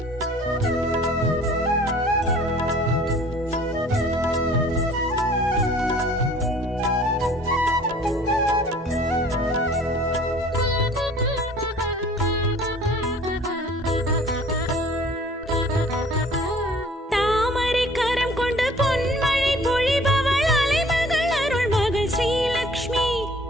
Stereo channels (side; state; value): both; normal; correlation 0.51